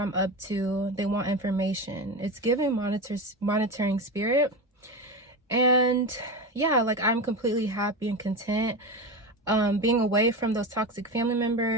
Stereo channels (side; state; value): both; normal; correlation 0.21